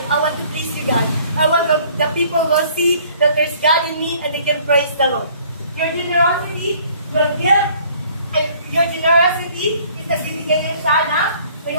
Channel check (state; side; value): inverted; both; correlation -0.57